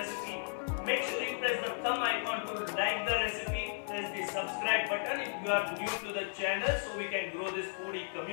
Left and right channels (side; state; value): right; silent; digital silence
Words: make sure you press the thumb icon to like the recipe, press the subscribe button if you are new to the channel so we can grow this foodie